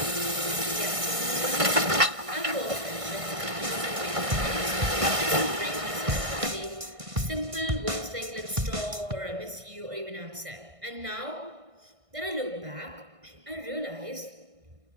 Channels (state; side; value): late; left; 1.5 ms